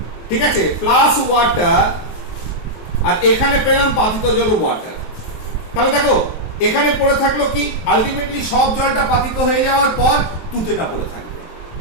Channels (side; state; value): right; late; 23 ms